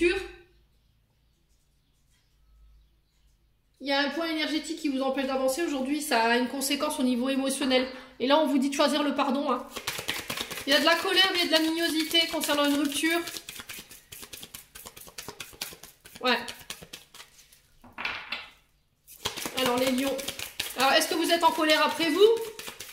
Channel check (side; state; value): both; identical; correlation 1.00